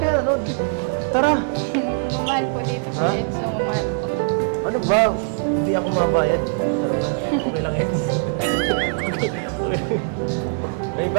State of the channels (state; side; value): silent; left; digital silence